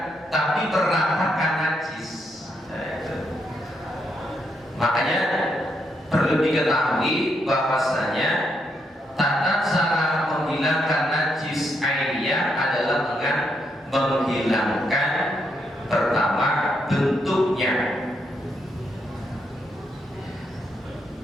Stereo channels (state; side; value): normal; both; correlation 0.78